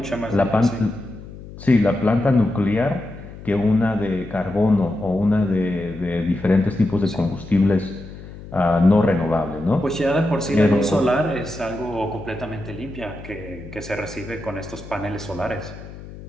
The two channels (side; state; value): left; noise; hum, 15 dB below the sound